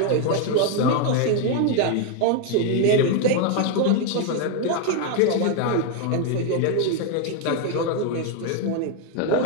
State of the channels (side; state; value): both; different; correlation 0.01